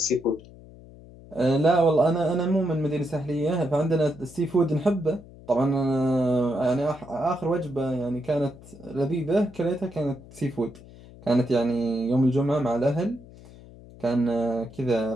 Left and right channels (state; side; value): noise; left; hum, 20 dB below the sound